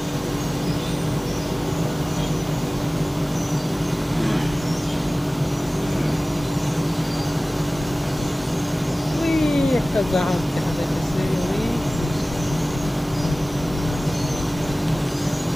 ওই একটা জাহাজ দেখা যাচ্ছে,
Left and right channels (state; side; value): normal; both; correlation 0.98